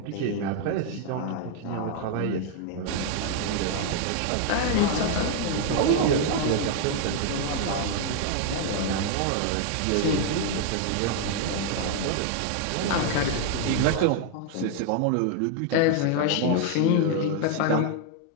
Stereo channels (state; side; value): different; both; correlation 0.00